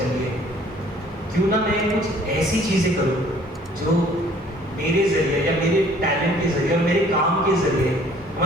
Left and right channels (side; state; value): both; normal; correlation 0.56